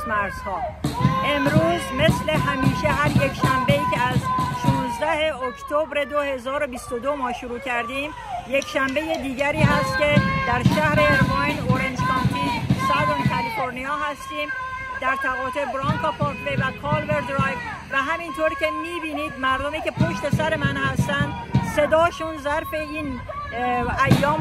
مرزها. امروز مثل همیشه هر یک شنبه‌ای که از 16 اکتبر 2022 ما شروع کردیم، یک شنبه دیگری هست که در شهر ایرواین، اورنج کانتی، سادرن کالیفرنیا هستیم، در تقاطع برانکا پارکوی و کالور درایو و همینطور که میبینید مردمی که پشت سر من هستن صداشون ظرف این ایام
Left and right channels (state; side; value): identical; both; correlation 1.00